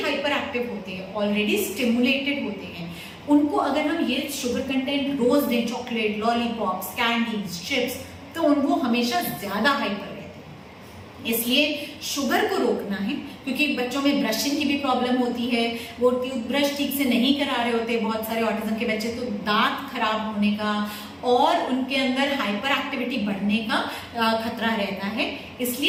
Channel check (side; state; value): both; identical; correlation 1.00